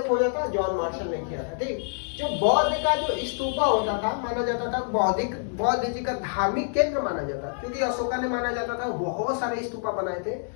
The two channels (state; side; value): silent; right; digital silence